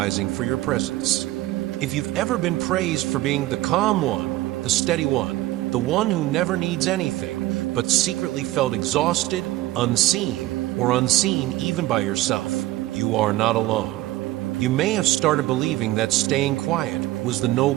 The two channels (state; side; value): quieter; left; 16.8 dB